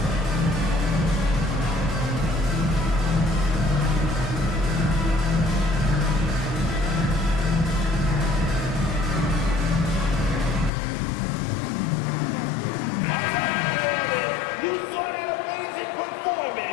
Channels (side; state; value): right; drops out; at 10.7 s